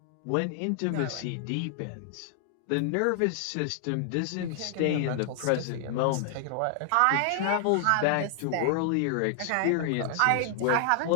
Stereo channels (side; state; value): both; different; correlation 0.00